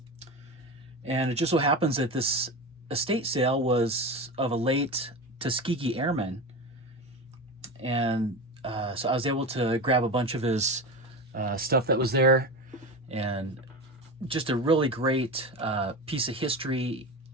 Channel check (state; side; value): normal; both; correlation 0.24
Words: and it just so happens that this estate sale was of a late Tuskegee Airman, and so I was able to grab a bunch of his stuff that was there, and just a really great piece of history.